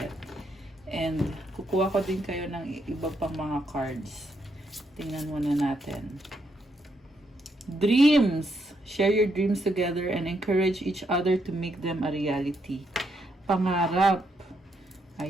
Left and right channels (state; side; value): normal; both; correlation 0.77